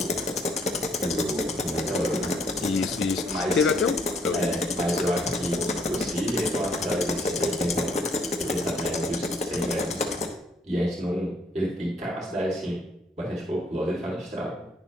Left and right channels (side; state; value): both; normal; correlation 0.67